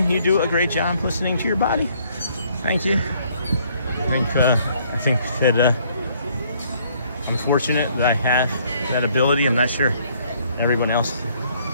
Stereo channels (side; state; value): both; inverted; correlation -0.65